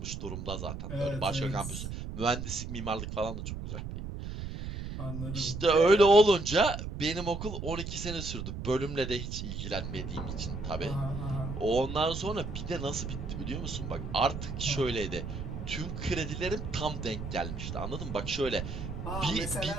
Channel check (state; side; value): noise; right; rumble, 6 dB below the sound